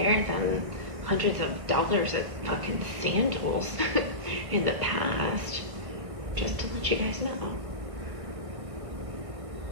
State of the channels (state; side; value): late; left; 1.5 ms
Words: than hundreds of dollars at fucking Sandals in the past. Just to let you guys know.